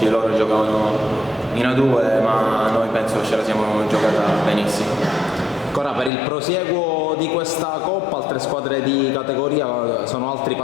di loro giocavano in A2, ma noi penso che ce la siamo giocata benissimo. Ancora per il prosieguo di questa Coppa, altre squadre di categoria sono altri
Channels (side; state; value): right; drops out; at 6.1 s